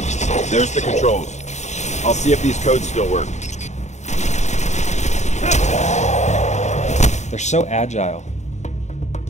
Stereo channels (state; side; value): late; right; 0.34 ms